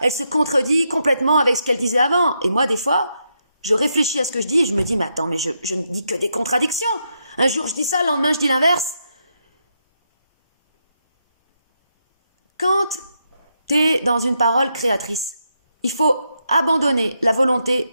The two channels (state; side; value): inverted; both; correlation -0.81